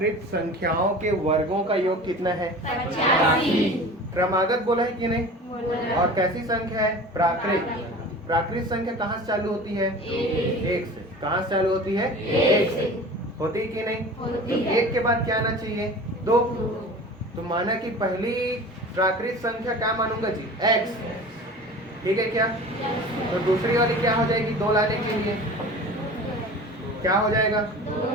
संख्याओं के वर्गों का योग कितना है? 85। क्रमागत बोला है कि नहीं? और कैसी संख्या है? प्राकृत। प्राकृत संख्या कहाँ से चालू होती है? एक से। कहाँ से चालू होती है? एक से। होती है कि नहीं? होती है। एक के बाद क्या आना चाहिए? दो। तो माना कि पहली प्राकृत संख्या क्या मानूंगा जी? x। ठीक है क्या? तो दूसरी वाली क्या हो जाएगी? दो लाने के लिए क्या हो जाएगा?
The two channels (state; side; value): normal; both; correlation 0.38